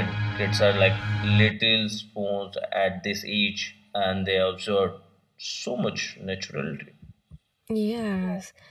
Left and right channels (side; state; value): both; identical; correlation 1.00